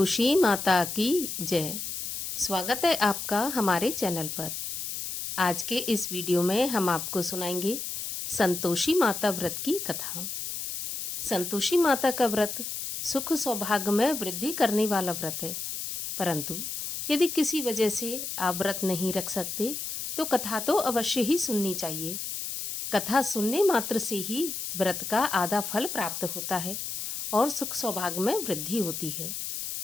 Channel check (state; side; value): noise; left; hiss, 5 dB below the sound